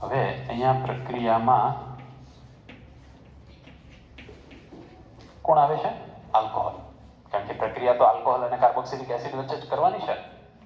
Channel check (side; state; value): both; identical; correlation 1.00